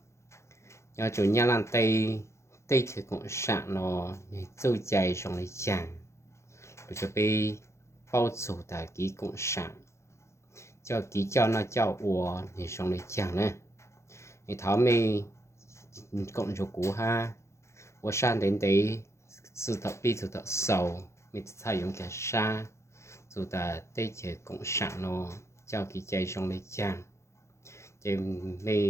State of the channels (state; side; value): late; right; 0.14 ms